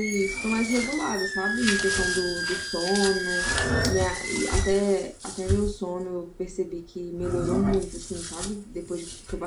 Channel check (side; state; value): both; identical; correlation 1.00